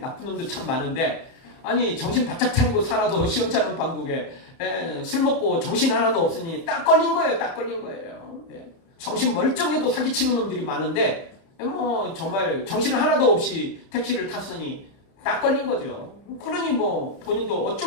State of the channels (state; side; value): late; right; 30 ms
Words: 놈들 참 많은데 아니 정신 바짝 차리고 살아도 시원찮은 방국에 술 먹고 정신 하나도 없으니 딱 걸린 거예요. 딱 걸린 거예요. 정신 멀쩡해도 사기치는 놈들이 많은데 뭐 정말 정신 하나도 없이 택시를 탔으니 딱 걸린 거죠. 그러니 뭐 본인도